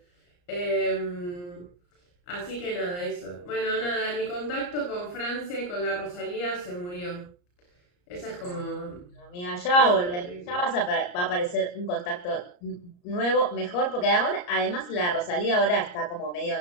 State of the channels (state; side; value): late; right; 34 ms